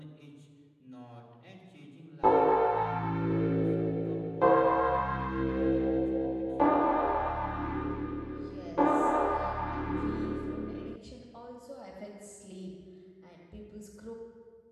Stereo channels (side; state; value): both; identical; correlation 1.00